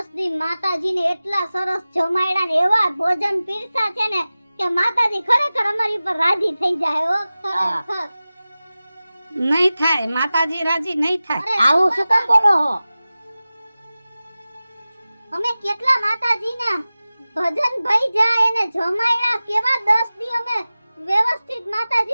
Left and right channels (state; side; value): inverted; both; correlation -0.96